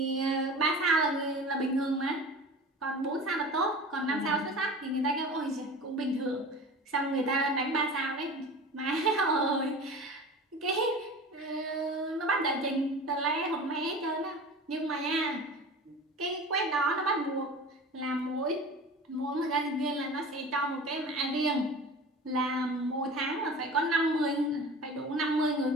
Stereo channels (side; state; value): both; normal; correlation 0.36